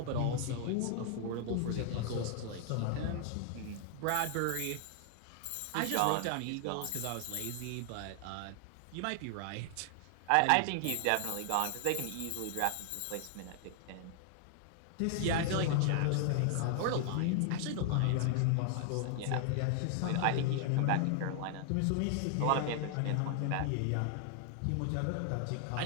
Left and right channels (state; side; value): different; both; correlation 0.00